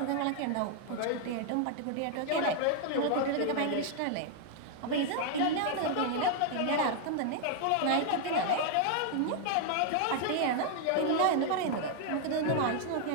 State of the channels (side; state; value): both; different; correlation 0.00